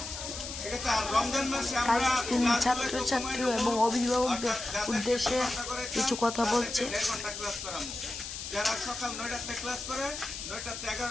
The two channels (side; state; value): left; noise; hiss, 8 dB below the sound